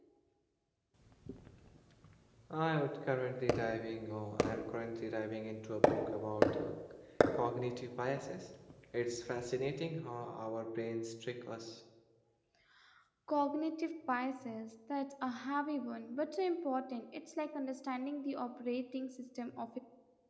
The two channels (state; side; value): identical; both; correlation 1.00